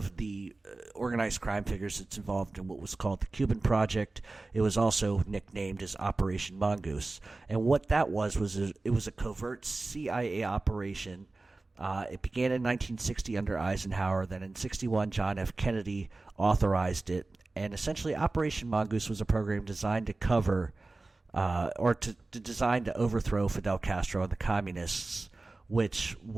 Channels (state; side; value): quieter; left; 3.3 dB